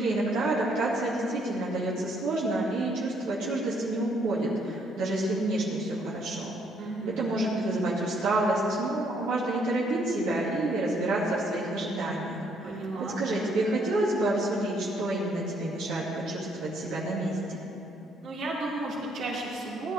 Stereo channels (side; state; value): both; normal; correlation 0.69